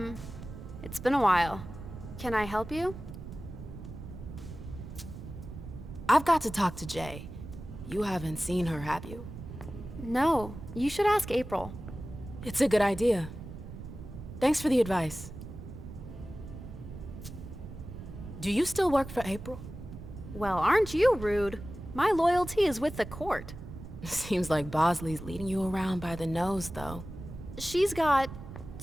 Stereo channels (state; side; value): noise; right; rumble, 12 dB below the sound